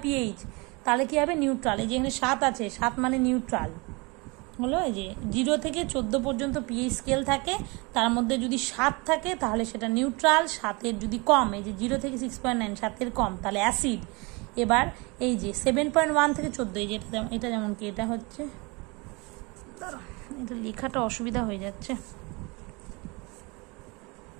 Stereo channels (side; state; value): left; quieter; 27.3 dB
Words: পিএইচ, তাহলে কি হবে? নিউট্রাল। এই যে এখানে 7 আছে, 7 মানে নিউট্রাল হলো। এই যে 0 থেকে 14 পর্যন্ত পিএইচ স্কেল থাকে, তার মধ্যে যদি 7 থাকে তাহলে সেটা নিউট্রাল, 7-এর যদি কম, এই যে 0 থেকে 6.9, 7-এর কম, তাহলে অ্যাসিড। এবার এই যে 7.1 থেকে 14, এই যে এটা যেমন কি, এটা হচ্ছে, এটা লেখাটা অসুবিধা হয়ে যাচ্ছে,